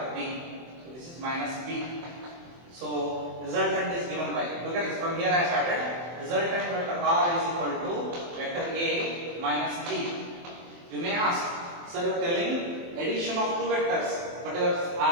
B. So this is minus B. So resultant is given by, look at this, from here I started. Resultant vector R is equal to vector A minus B. You may ask, sir, you are telling addition of two vectors, but you are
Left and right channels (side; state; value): left; late; 23 ms